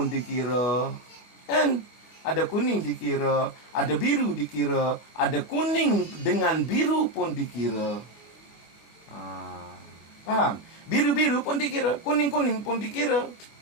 dikira. Kan? Ada kuning dikira, ada biru dikira, ada kuning dengan biru pun dikira. Faham? Biru-biru pun dikira, kuning-kuning pun dikira.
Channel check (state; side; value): late; right; 25 ms